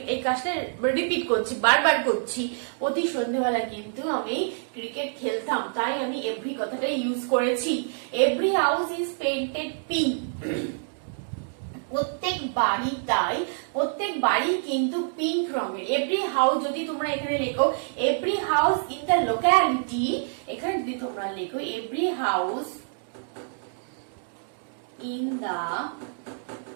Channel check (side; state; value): left; silent; digital silence